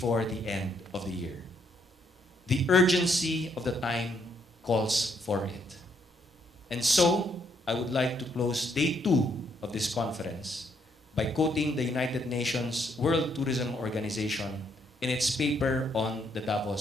the end of the year. The urgency of the time calls for it. And so, I would like to close day 2 of this conference by quoting the United Nations World Tourism Organization in its paper on the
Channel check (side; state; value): both; normal; correlation 0.72